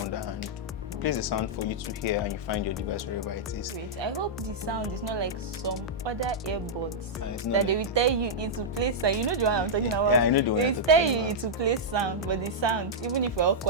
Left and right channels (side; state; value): both; normal; correlation -0.08